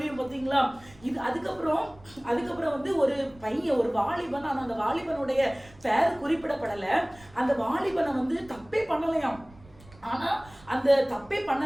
பார்த்தீங்களா? இது அதுக்கப்புறம் வந்து ஒரு பையன், ஒரு வாலிபன், ஆனா அந்த வாலிபனுடைய பெயர் குறிப்பிடப்படல. அந்த வாலிபனை வந்து தப்பே பண்ணலையாம். ஆனா அந்த தப்பே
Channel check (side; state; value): right; noise; rumble, 24 dB below the sound